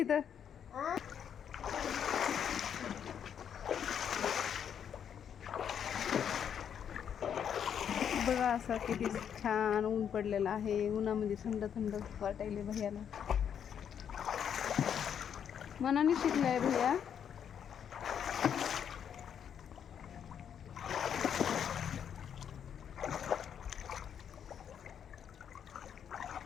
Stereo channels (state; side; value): quieter; right; 8.4 dB